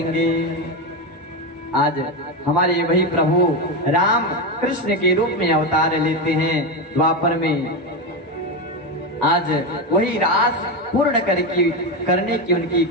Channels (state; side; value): normal; both; correlation 0.14